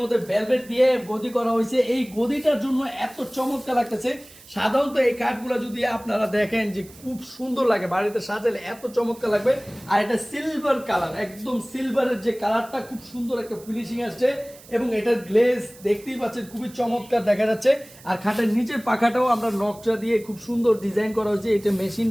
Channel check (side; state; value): right; noise; hiss, 22 dB below the sound